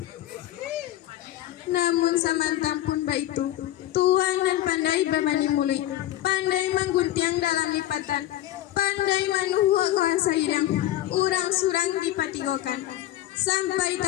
Namun samantang pun baitu, tuan dan pandai berbani mulut, pandai mengguntiang dalam lipatan, pandai manuhua kawan sayidang, urang surang dipatigokan, sampai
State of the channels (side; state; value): right; quieter; 13.7 dB